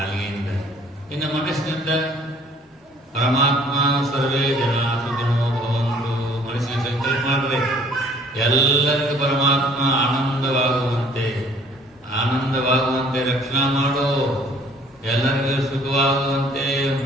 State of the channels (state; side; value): normal; both; correlation 0.57